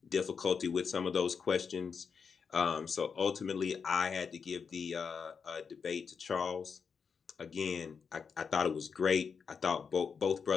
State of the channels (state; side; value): quieter; right; 6.0 dB